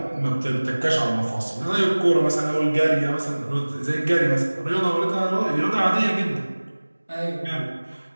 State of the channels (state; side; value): inverted; both; correlation -1.00